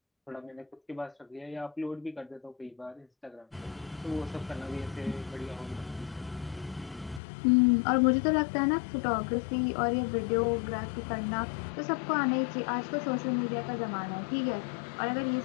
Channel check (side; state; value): right; drops out; at 7.2 s